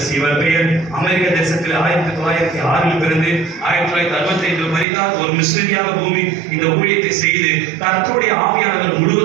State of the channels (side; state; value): left; drops out; at 4.9 s